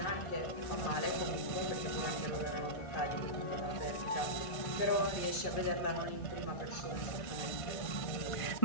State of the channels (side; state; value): right; late; 1.5 ms